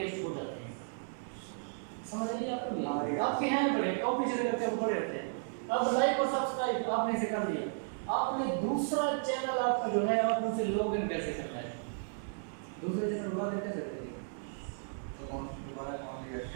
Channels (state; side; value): silent; left; digital silence